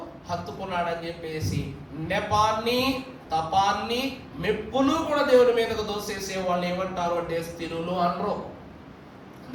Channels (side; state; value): both; identical; correlation 1.00